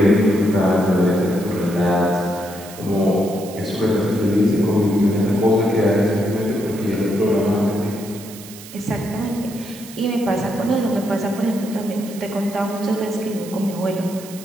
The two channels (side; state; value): right; noise; hiss, 16 dB below the sound